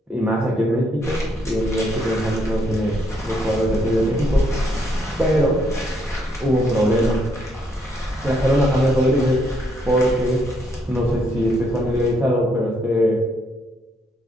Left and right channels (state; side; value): normal; both; correlation 0.73